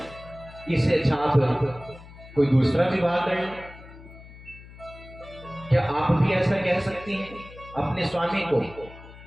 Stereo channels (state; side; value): noise; left; hum, 18 dB below the sound